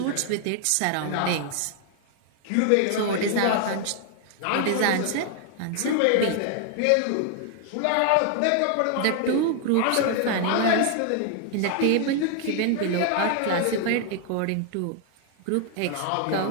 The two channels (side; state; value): both; different; correlation 0.00